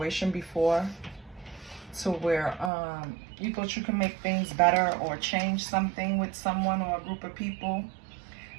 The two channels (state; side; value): drops out; left; at 2.7 s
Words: before to where you thought you can make things better or change something with someone or a group of people,